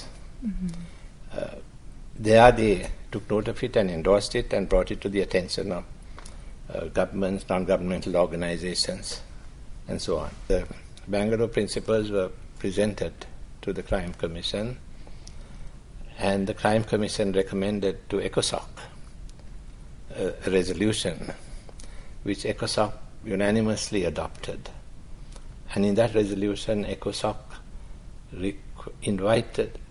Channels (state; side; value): identical; both; correlation 1.00